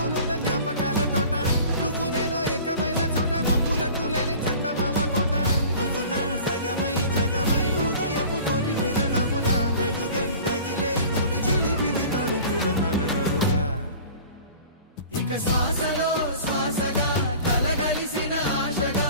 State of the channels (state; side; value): inverted; both; correlation -0.43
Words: జ్ఞాపకాల తోట నువ్వు నేను ఏకమైన చోట మబ్బులట్టు లేని చందమామ కోట నువ్వు నా సగమై జగమై ఉదయపు తోని కిరణముల వెలుగై తగిలే నులి చిలిపిలి తడుపుల తరగరుగా ఇక శ్వాసలో శ్వాసగా కలగలిసిన ఆశగా